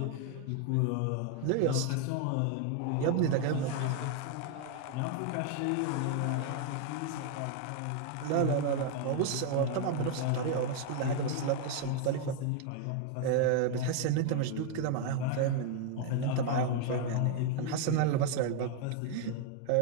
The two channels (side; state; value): both; different; correlation 0.00